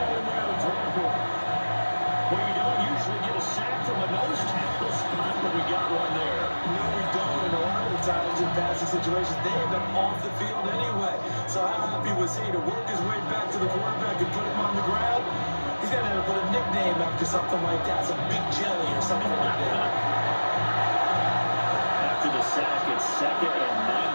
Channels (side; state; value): both; inverted; correlation -1.00